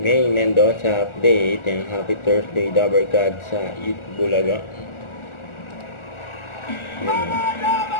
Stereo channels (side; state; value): right; late; 1.4 ms